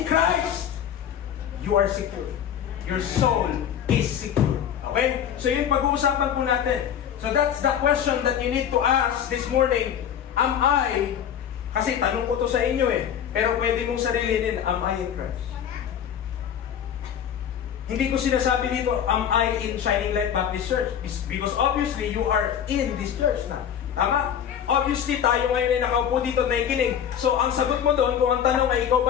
Christ, you are secure. Your soul is secure. Okay? So yun pag-uusapan po natin. So that's the question that you need to ask this morning. Am I, kasi tanong ko to sa inyo pero pwede mong sarilinin, am I in Christ? Hindi ko sinasabi dito, am I in Shining Light Baptist Church? Because obviously, you are in this church na. Tama? Obviously, tayo ngayon ay nakaupo dito na nakikinig. So, ang sagot mo doon, kung ang tanong ay ikaw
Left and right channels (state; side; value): quieter; right; 9.1 dB